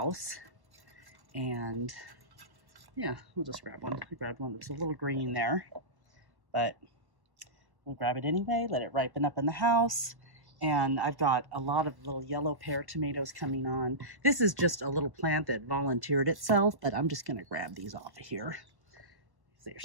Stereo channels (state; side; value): late; left; 1.1 ms